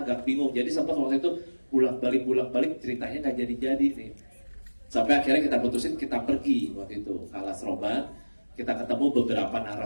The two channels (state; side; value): inverted; both; correlation -1.00